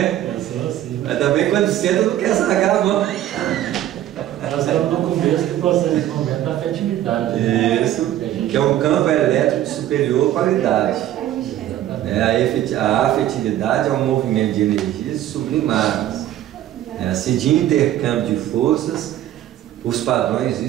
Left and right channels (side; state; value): left; quieter; 12.7 dB